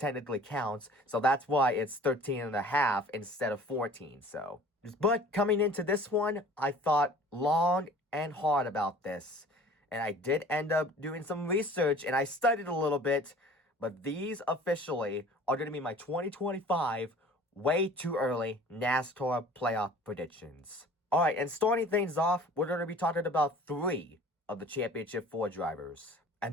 counts. So that's why it's 13.5 instead of 14. So, but coming into this one, I thought long and hard about this. And I did end up doing some research, and I studied a little bit. But these officially are going to be my 2025 way too early NASCAR playoff predictions. All right, and starting things off, we're going to be talking about 3 of the Championship 4 drivers.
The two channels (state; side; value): normal; both; correlation 0.47